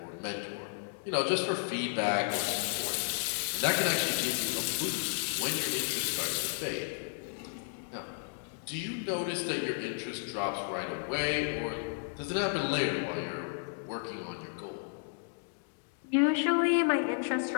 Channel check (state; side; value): silent; right; digital silence